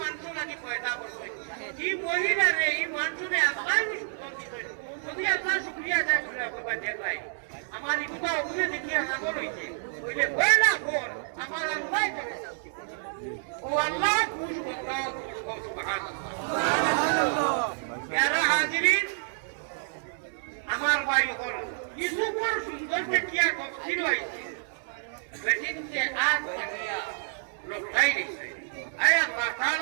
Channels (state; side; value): silent; left; digital silence